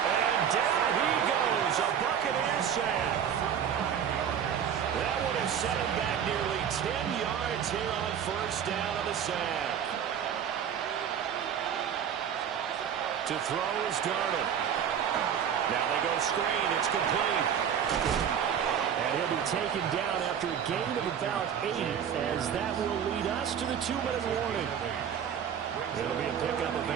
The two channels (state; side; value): quieter; left; 8.5 dB